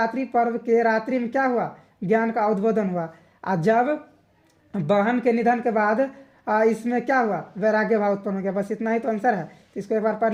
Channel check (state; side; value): identical; both; correlation 1.00